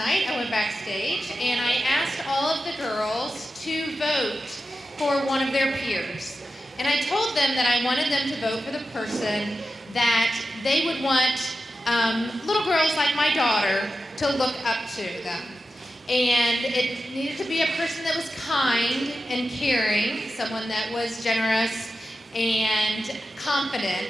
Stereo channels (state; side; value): normal; both; correlation 0.92